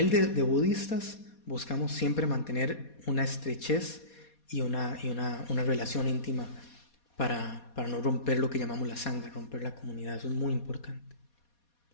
de budistas, buscamos siempre mantener una estrechez y una relación íntima para no romper lo que llamamos la sangre, romper la comunidad. Eso es muy importante.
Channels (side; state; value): right; late; 4.2 ms